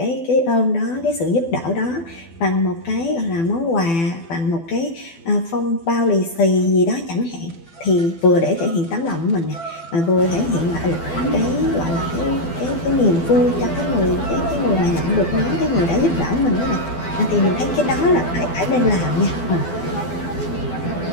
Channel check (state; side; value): late; right; 12 ms